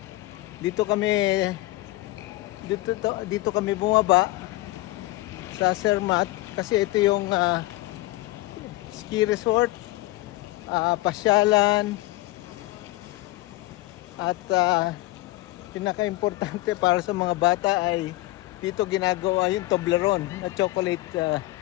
dito kami bumaba sa Zermatt kasi ito yung ski resort, pasyalan, at pinaka-importante para sa mga bata ay dito ginagawa yung Toblerone na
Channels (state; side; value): quieter; right; 18.9 dB